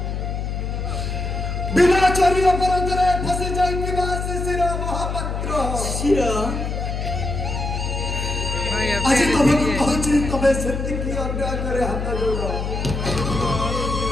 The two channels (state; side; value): noise; left; hum, 3 dB below the sound